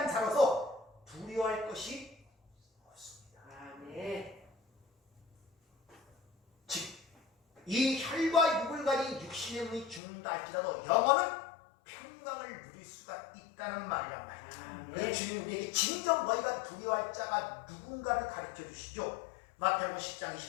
자로서 두려워할 것이 없습니다. 아멘. 즉 이 혈과 육을 가진 육신의 몸이 죽는다 할지라도 영혼은 평강을 누릴 수가 있다는 말이란 말이에요. 그래서 주님이 우리에게 진정 너희가 두려워할 자가 누군가를 가르쳐 주시죠. 마태복음 10장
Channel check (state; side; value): drops out; right; at 10.0 s